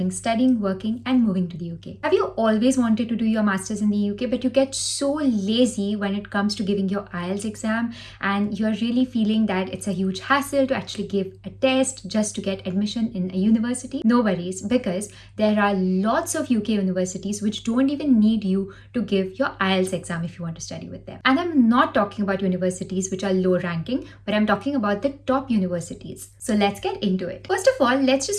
studying, working and moving to the UK. Have you always wanted to do your masters in the UK but you get so lazy when it comes to giving your IELTS exam and you're really feeling that it's a huge hassle to actually give a test just to get admission in a university? No worries, because there are lots of UK universities which don't even need you to give your IELTS exam if you want to study with them. And I'm not talking about universities which are low ranking, but I'm talking about the top universities. So let's get into it. First of all, let's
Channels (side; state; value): both; identical; correlation 1.00